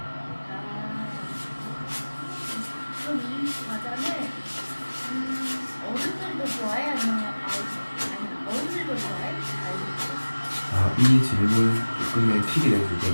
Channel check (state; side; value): inverted; both; correlation -1.00